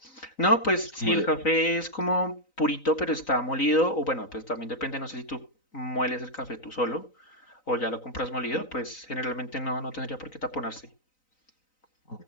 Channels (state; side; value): late; right; 3.9 ms